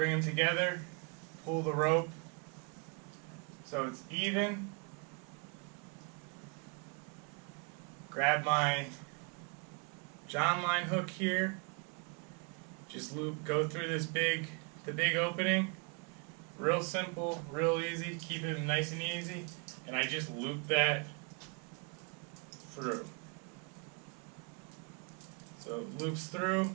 them together, pull the rope so it's even. Grab my Jon Line hook here. Just go through the big opening. Real simple, real easy. Keep it nice and easy. And I just loop that through. So it loops through.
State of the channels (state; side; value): quieter; left; 34.8 dB